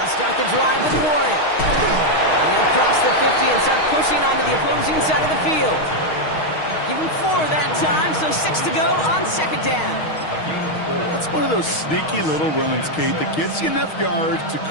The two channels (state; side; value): late; right; 6.4 ms